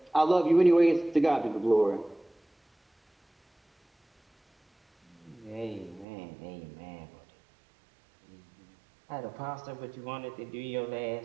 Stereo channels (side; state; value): left; drops out; at 6.1 s